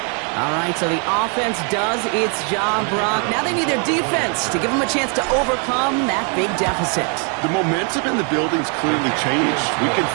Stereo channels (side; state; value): left; quieter; 38.8 dB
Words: All right, so the offense does its job, Brock. Now they need their defense to give them a chance to overcome that big deficit. The momentum in the building's clearly changed. We can